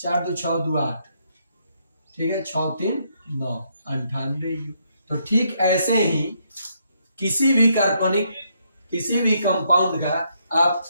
2 6 2 8, ठीक है, 6 3 9, 98 यू। तो ठीक ऐसे ही किसी भी कार्बनिक, किसी भी कंपाउंड का आप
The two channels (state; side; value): inverted; both; correlation -0.75